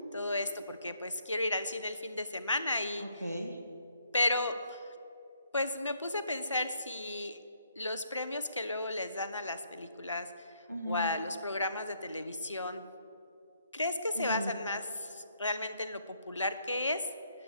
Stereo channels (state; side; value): inverted; both; correlation -0.71